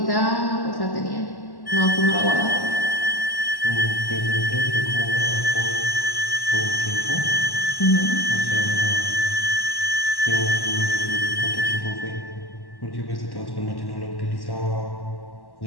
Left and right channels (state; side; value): late; right; 1.1 ms